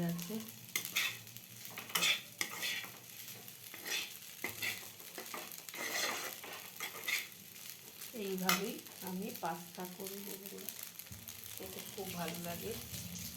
গেছে। এইভাবেই আমি পাস্তা করি বন্ধুরা, খেতে খুব ভালো লাগে।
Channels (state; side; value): identical; both; correlation 1.00